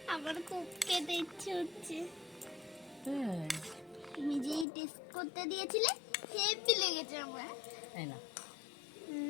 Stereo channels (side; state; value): right; drops out; at 4.7 s